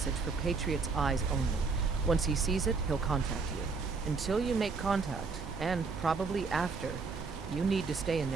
for Patriot's eyes only. Once he sees it, he'll contact you. Until you make contact, and probably after, you need to stay in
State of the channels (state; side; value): quieter; left; 4.6 dB